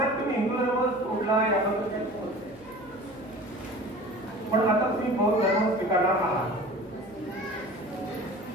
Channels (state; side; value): noise; left; hum, 25 dB below the sound